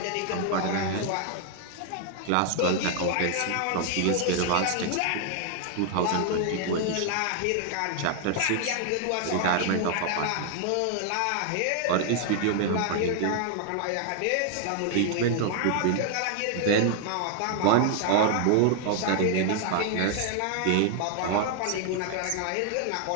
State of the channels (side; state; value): both; different; correlation 0.00